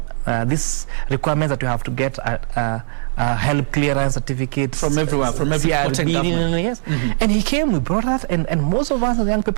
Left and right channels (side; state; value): left; silent; digital silence